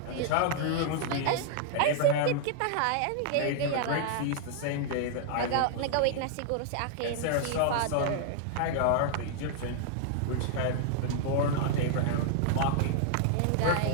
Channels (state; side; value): different; both; correlation 0.00